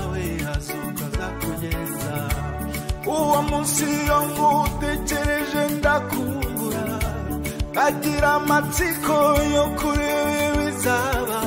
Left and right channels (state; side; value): identical; both; correlation 1.00